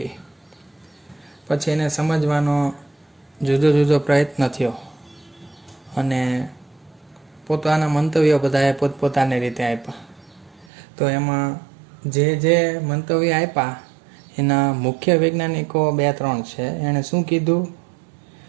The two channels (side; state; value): left; drops out; at 10.7 s